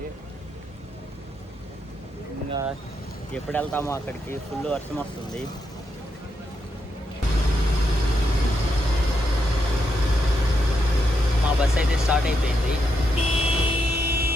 ఇంకా ఎప్పుడు వెళ్తామో అక్కడికి. ఫుల్ వర్షం వస్తుంది. మా బస్సు అయితే స్టార్ట్ అయిపోయింది.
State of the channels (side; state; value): both; normal; correlation 0.81